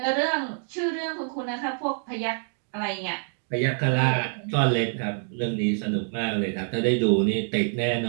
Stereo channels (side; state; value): left; silent; 56 dB below the other